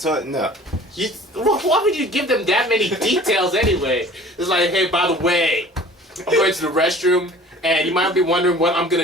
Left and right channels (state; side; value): normal; both; correlation 0.46